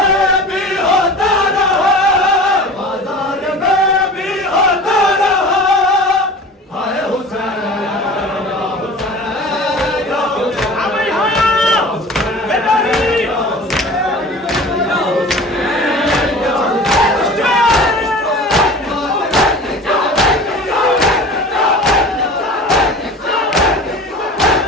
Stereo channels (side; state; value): both; normal; correlation 0.38